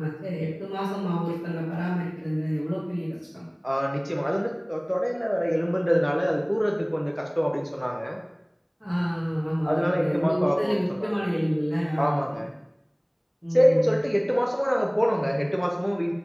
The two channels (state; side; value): identical; both; correlation 1.00